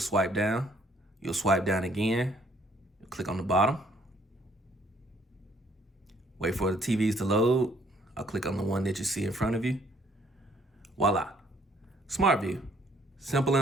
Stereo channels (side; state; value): both; normal; correlation 0.64